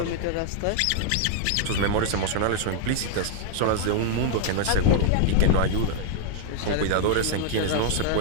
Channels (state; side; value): different; both; correlation -0.01